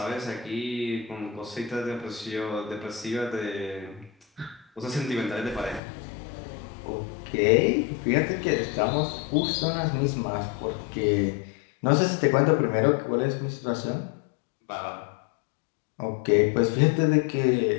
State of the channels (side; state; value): right; drops out; at 5.8 s